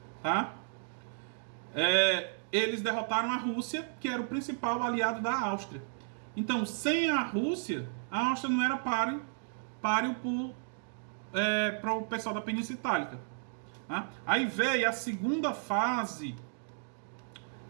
tá? Eles derrotaram a Rússia, que era o principal aliado da Áustria. Então, sem a Rússia, a Áustria não era páreo para o pessoal da Península Itálica. Tá? Aí veio a segunda fase.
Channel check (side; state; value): left; silent; digital silence